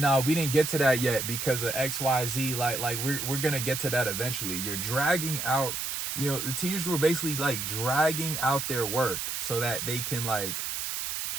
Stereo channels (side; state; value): right; noise; hiss, 3 dB below the sound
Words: we didn't get to that yet because of XYZ. Like we're gonna get to that eventually. You're dragging out. The teachers were basically like dragging out their work so that they can I